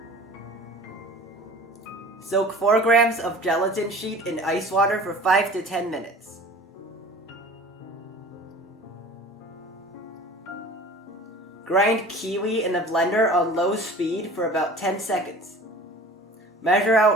Soak 4 grams of gelatin sheet in ice water for 5 to 10 minutes. Grind kiwi in a blender on low speed for about 10 seconds. Measure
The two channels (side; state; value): both; normal; correlation 0.42